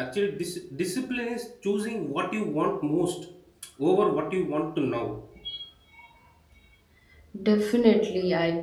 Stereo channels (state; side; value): identical; both; correlation 1.00